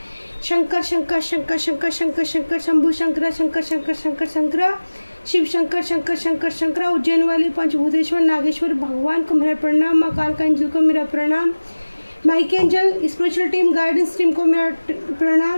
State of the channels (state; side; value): inverted; both; correlation -1.00